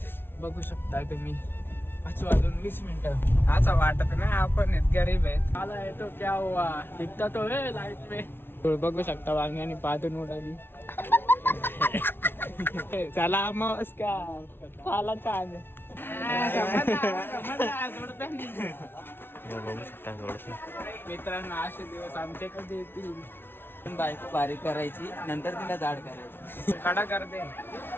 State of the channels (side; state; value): right; late; 0.11 ms